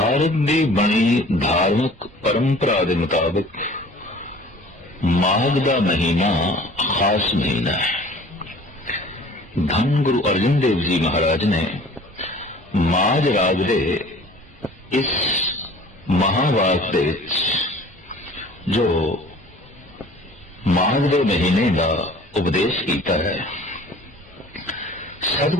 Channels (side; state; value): both; normal; correlation 0.48